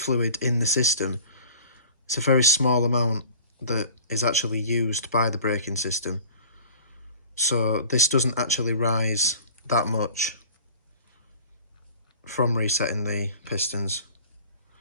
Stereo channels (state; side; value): inverted; both; correlation -0.45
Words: in the system. It's a very small amount that is actually used by the braking system. So this doesn't actually rise that much from resetting the pistons.